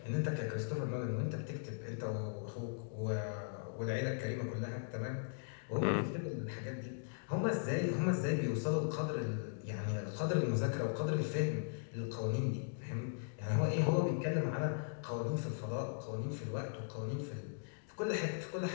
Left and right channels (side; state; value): right; silent; digital silence